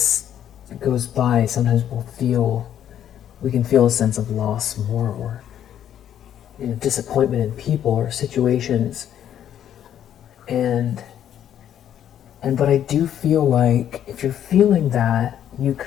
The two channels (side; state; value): right; quieter; 10.3 dB